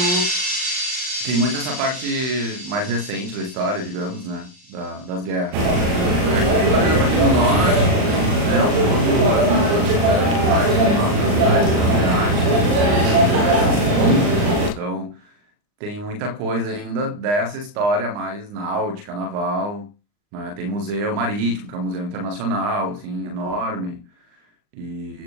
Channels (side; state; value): left; late; 39 ms